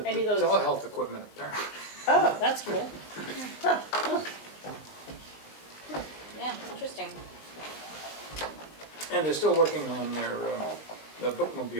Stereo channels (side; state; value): right; late; 19 ms